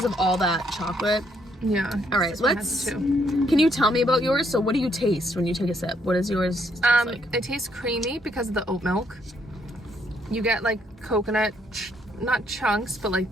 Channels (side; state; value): both; normal; correlation 0.72